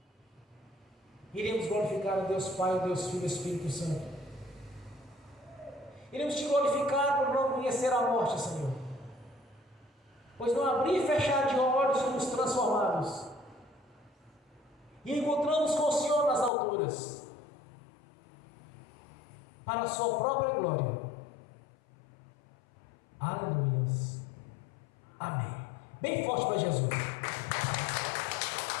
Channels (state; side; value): drops out; right; at 16.5 s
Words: Iremos glorificar o Deus Pai, o Deus Filho e o Espírito Santo. Iremos te glorificar por não conhecer a morte, Senhor. Pois no abrir e fechar de olhos somos transformados. E encontramos com o Senhor nas alturas. Para a sua própria glória. Aleluias. Amém. Bem forte para Jesus.